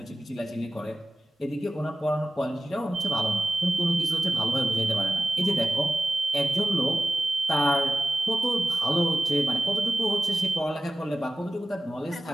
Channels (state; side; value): normal; both; correlation 0.94